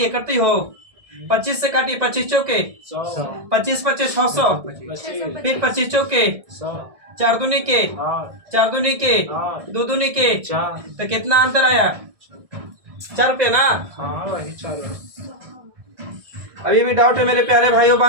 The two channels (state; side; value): late; left; 1.6 ms